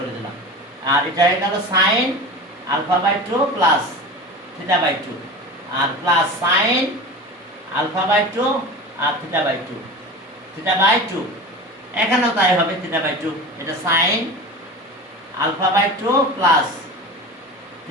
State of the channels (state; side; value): normal; both; correlation 0.32